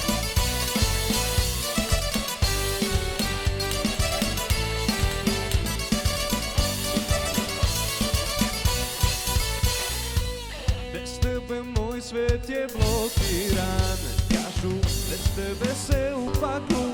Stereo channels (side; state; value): both; identical; correlation 1.00